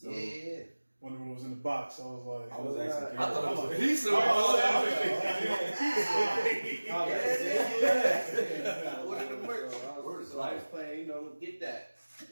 Yeah. When it was in the box, I was like, I was I asking. I thought it was a piece of Order the merch. Word is So I was life. playing, Get that.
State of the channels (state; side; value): inverted; both; correlation -1.00